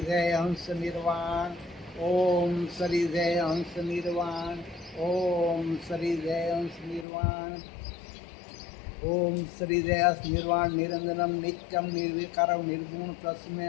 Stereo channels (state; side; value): drops out; right; at 7.1 s